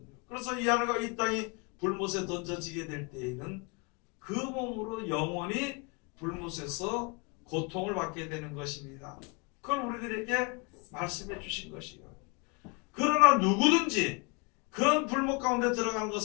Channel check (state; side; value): quieter; right; 31.1 dB